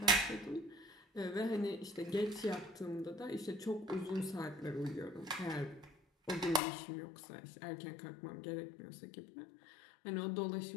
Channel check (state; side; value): drops out; right; at 6.6 s